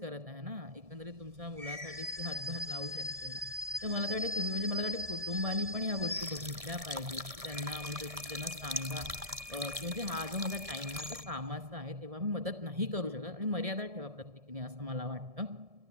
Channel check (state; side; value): late; left; 1.7 ms